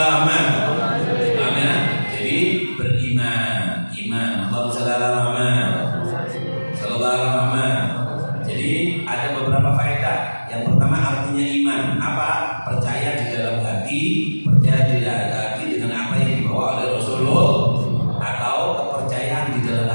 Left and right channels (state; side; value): inverted; both; correlation -1.00